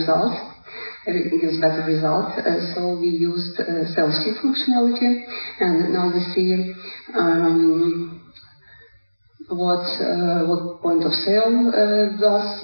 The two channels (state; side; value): inverted; both; correlation -1.00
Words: It gives better results. So we used sales sheet functionality, and now we see what point of sale